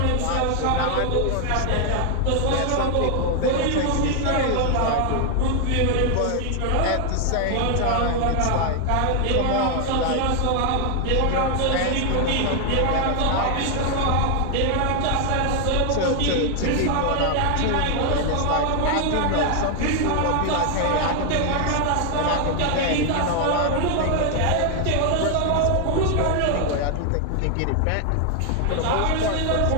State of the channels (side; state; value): both; different; correlation 0.00